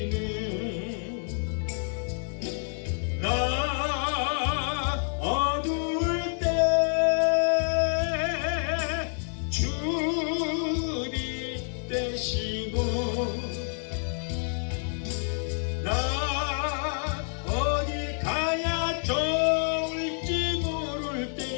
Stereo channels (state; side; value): silent; right; 59 dB below the other